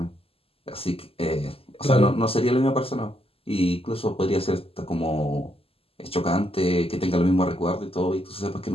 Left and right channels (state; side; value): late; right; 0.28 ms